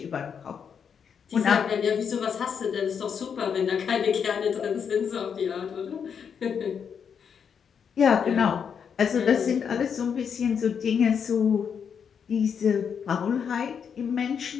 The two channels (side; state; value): right; quieter; 7.1 dB